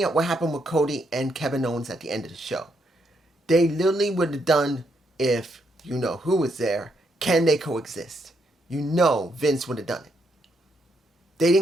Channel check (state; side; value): normal; both; correlation 0.77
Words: at what happened with Cody and Kevin Owens at the end of the show. They literally would have done, if you know who was there, can they coexist? You know Vince would have done it. They